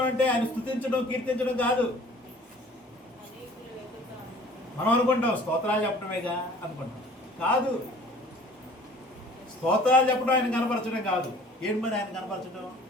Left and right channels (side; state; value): both; normal; correlation 0.50